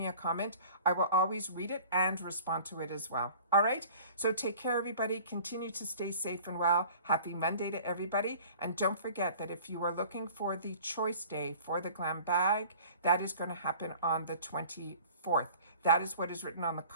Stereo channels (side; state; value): both; inverted; correlation -0.46